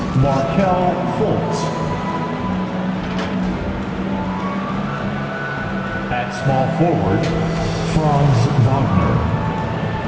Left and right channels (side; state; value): both; identical; correlation 1.00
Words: Markelle Fultz. At small forward, Franz Wagner.